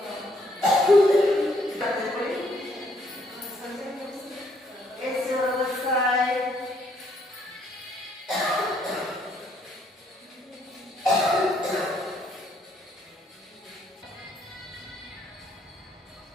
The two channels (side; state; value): both; normal; correlation 0.69